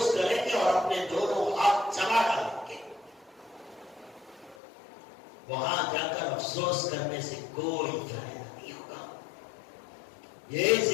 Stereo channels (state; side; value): drops out; right; at 4.5 s